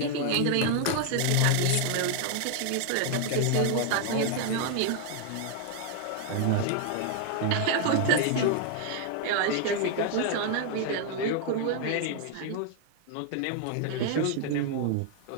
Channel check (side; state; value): both; different; correlation 0.00